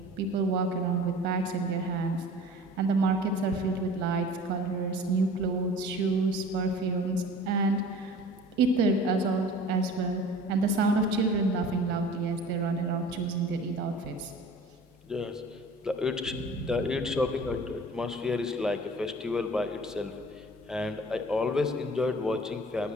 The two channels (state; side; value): normal; both; correlation 0.44